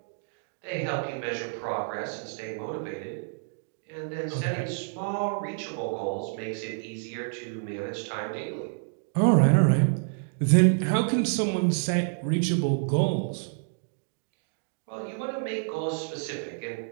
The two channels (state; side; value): silent; left; digital silence